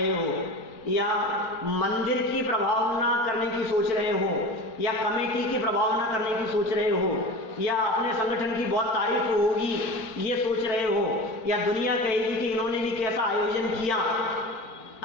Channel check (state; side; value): late; right; 4.5 ms